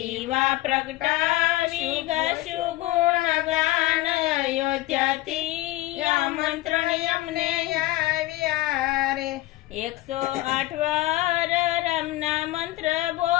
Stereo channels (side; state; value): right; quieter; 17.6 dB